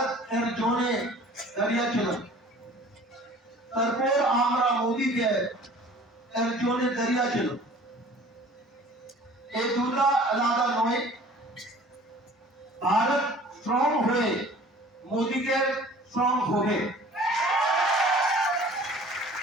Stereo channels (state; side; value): normal; both; correlation 0.48